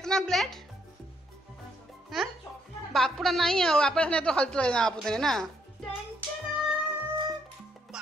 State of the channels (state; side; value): normal; both; correlation 0.72